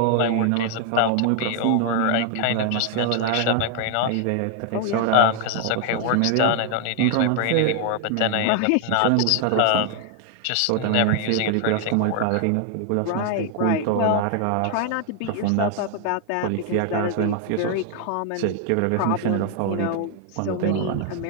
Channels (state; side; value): different; both; correlation 0.00